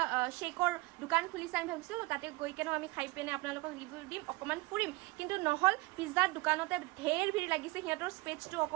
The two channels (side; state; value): left; quieter; 22.2 dB